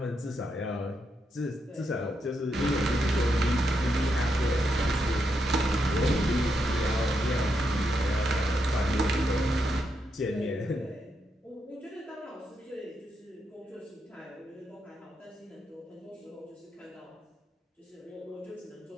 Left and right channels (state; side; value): normal; both; correlation 0.82